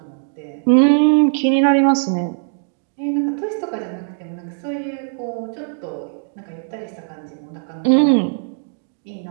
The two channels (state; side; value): silent; left; digital silence